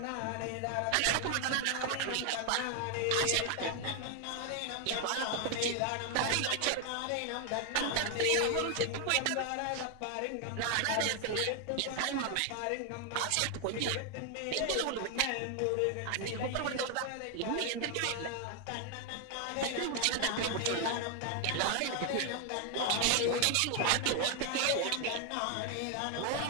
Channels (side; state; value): both; different; correlation 0.00